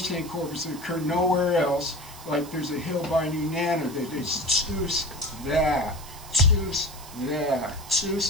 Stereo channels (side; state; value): right; noise; hiss, 17 dB below the sound